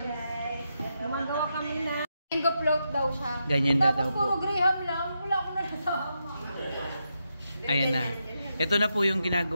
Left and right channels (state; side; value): inverted; both; correlation -0.84